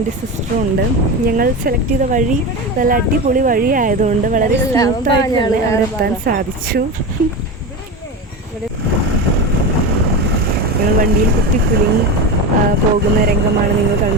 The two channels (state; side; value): normal; both; correlation 0.22